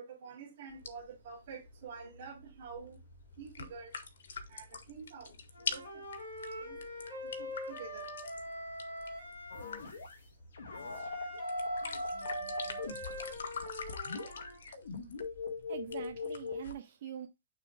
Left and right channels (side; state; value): both; inverted; correlation -0.60